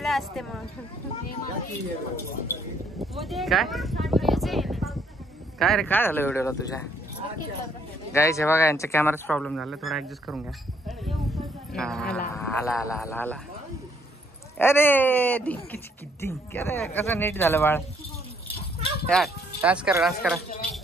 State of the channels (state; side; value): normal; both; correlation 0.68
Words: असते मग. काय काय रे काय झालं व्हिडिओला तुझ्या? गाईस हे बघा यांच्या कॅमेराच प्रॉब्लेम झाला, थोडा ऍडजस्ट करून घ्या. आला आला आला आला. अरे डिंकी चिकी डिंक. अरे कसं नीट झालं बाळ. यार डान्स करा डान्स करा.